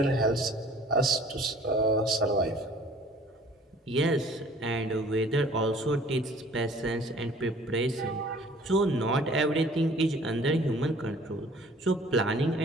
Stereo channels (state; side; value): normal; both; correlation 0.52